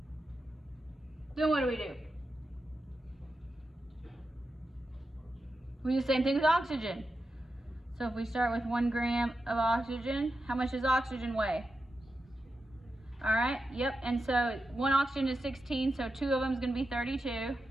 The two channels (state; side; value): normal; both; correlation 0.89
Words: Then what do? We do the same thing with oxygen. So if we start with 1 gram of oxygen, how much does oxygen weigh? All right, yep, and so 1 oxygen is 16, so 2 of them is going to be 32.